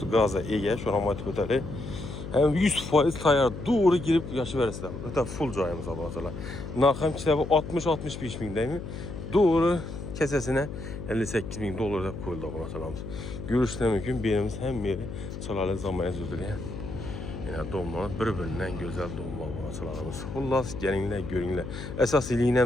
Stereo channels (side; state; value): left; noise; hum, 8 dB below the sound